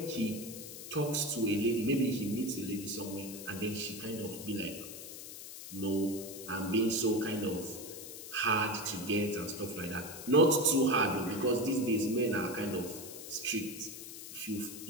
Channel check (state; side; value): noise; left; hiss, 11 dB below the sound